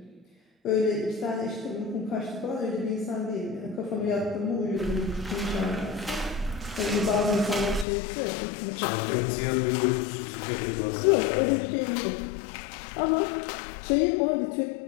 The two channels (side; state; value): right; drops out; at 7.9 s